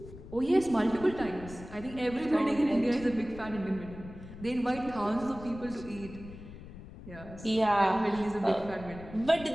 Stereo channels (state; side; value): noise; left; rumble, 15 dB below the sound